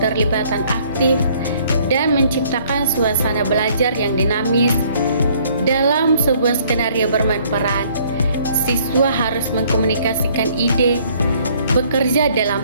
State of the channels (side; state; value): both; inverted; correlation -0.61